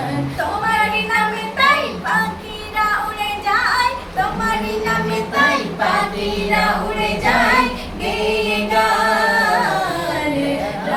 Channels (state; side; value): identical; both; correlation 1.00